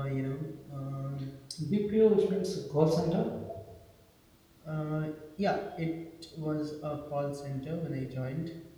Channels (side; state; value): both; identical; correlation 1.00